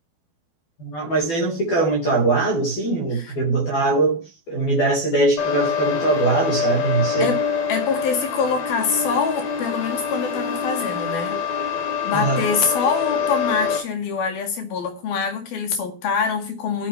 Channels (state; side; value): late; right; 12 ms